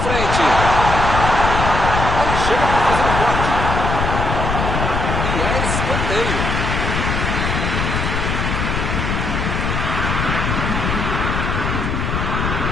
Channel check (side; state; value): left; noise; rumble, 1 dB below the sound